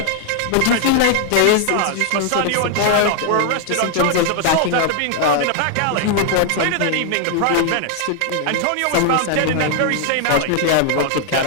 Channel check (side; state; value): both; different; correlation 0.00